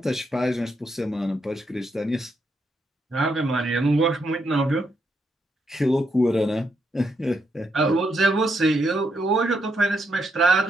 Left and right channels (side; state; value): both; normal; correlation 0.79